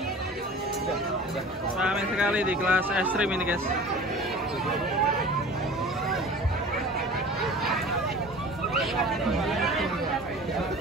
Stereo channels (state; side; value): normal; both; correlation 0.40